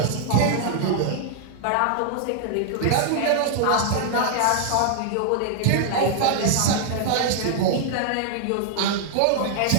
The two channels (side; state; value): both; different; correlation -0.01